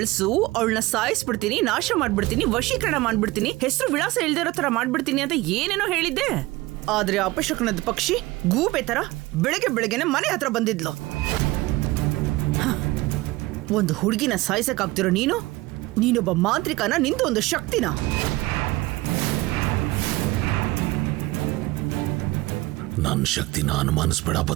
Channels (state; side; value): quieter; left; 20.0 dB